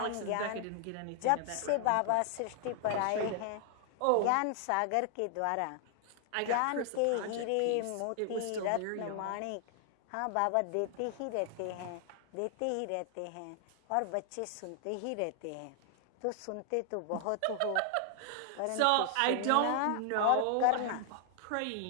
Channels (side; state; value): both; different; correlation 0.00